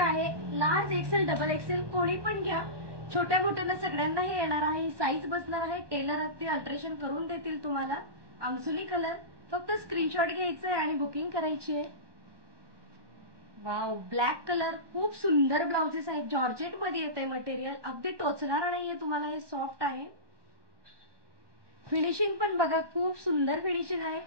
लार्ज एक्सेल, डबल एक्सेल कोणी पण घ्या, छोट्या मोठ्यांना सगळ्यांना हे येणार आहे. साईज बसणार आहे, टेलर अगदी अल्ट्रेशन करून देतील तुम्हाला. अंगसुली कलर, फक्त स्क्रीनशॉट घ्यायचं आहे आणि बुकिंग करायची आहे. वाव, ब्लॅक कलर, खूप सुंदर ब्लाउजेस आहेत. जॉर्जेट मध्ये येते मटेरियल, अगदी टोचणार नाहीये तुम्हाला, हे सॉफ्ट आहे. फिनिशिंग पण बघा, खूप सुंदर फिनिशिंग आहे.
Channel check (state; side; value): late; left; 1.2 ms